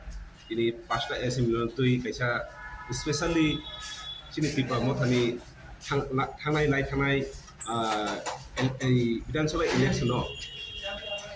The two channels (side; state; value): both; identical; correlation 1.00